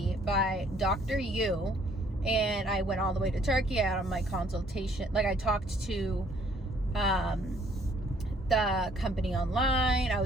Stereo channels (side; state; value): both; normal; correlation 0.63